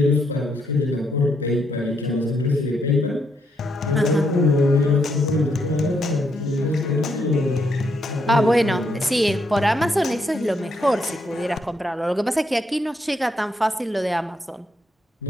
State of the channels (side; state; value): both; normal; correlation 0.77